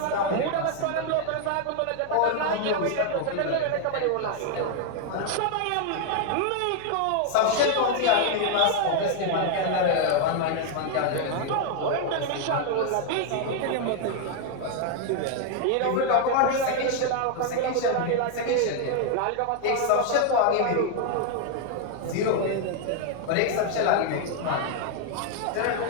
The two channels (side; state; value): both; different; correlation 0.00